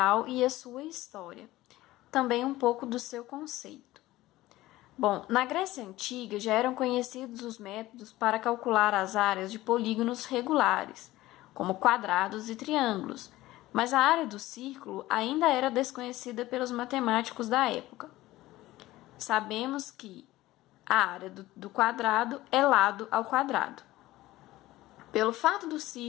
e a sua história, também um pouco do seu conceito. Bom, na Grécia Antiga já eram conhecidos os métodos para calcular as áreas de polígonos regulares, como quadrados e triângulos, mas a área do círculo ainda era desconhecida pelos matemáticos da época. Sabemos que a área do quadrado é lado ao quadrado. Pelo fato dos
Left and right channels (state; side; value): quieter; right; 17.1 dB